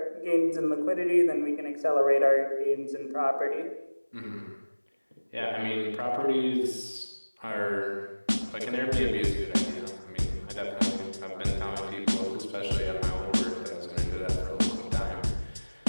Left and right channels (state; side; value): inverted; both; correlation -1.00